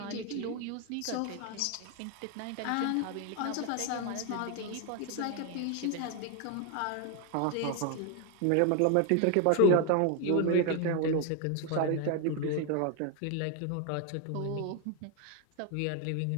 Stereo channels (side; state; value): both; different; correlation 0.00